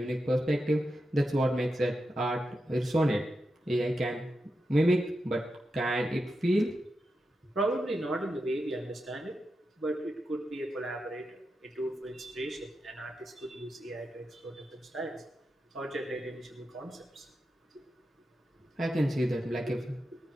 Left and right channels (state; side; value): normal; both; correlation 0.88